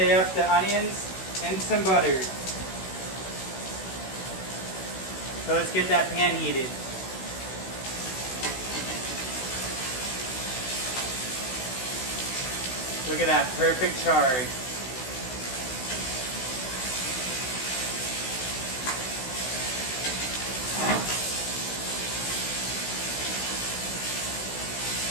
up the onions in some butter. So let's get that pan heated. Look at that perfect charred.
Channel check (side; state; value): right; late; 16 ms